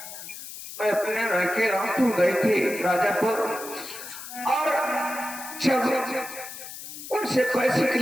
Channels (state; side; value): noise; left; hiss, 12 dB below the sound